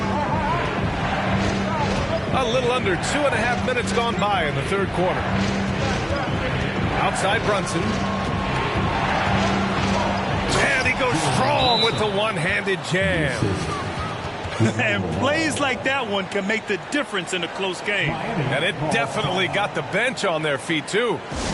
A little under 2.5 minutes gone by in the third quarter. Outside Brunson. And he goes strong with the one-handed jam. And plays like that one can make the difference in a close game. And it definitely got the bench on their feet, too.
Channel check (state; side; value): identical; both; correlation 1.00